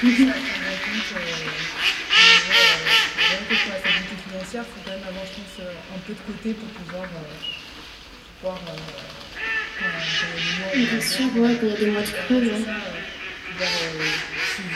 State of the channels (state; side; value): identical; both; correlation 1.00